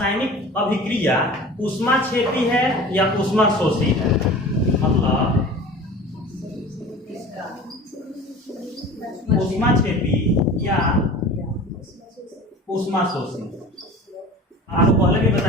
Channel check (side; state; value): both; normal; correlation 0.39